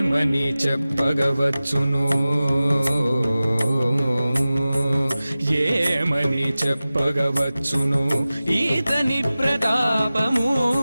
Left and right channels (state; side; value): inverted; both; correlation -0.96